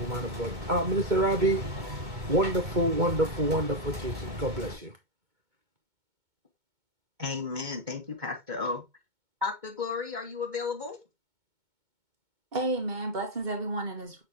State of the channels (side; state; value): left; late; 2.2 ms